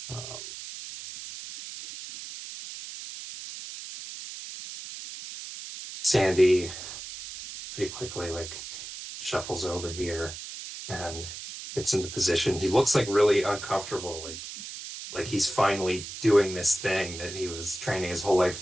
Sandy pretty quickly like shuffles over here and gets into position. He looks like really uncomfortable, like he's finally doing this thing that he was training his whole life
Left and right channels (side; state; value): right; noise; hiss, 10 dB below the sound